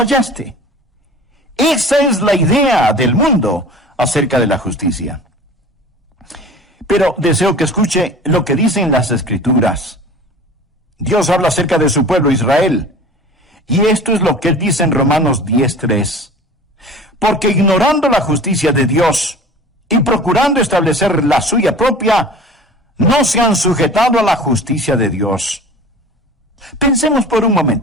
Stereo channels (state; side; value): normal; both; correlation 0.41